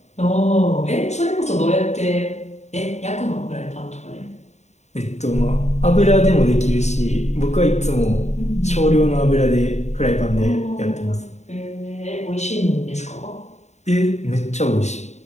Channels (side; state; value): right; late; 0.33 ms